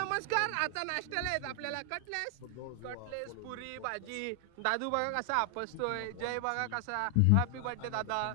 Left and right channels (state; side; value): different; both; correlation 0.00